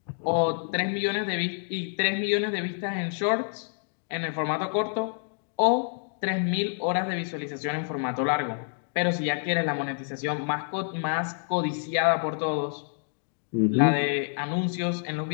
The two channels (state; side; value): silent; right; 59 dB below the other